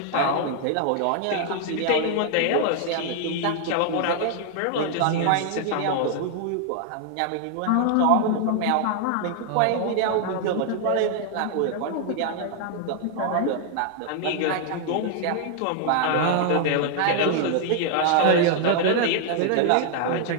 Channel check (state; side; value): different; both; correlation 0.00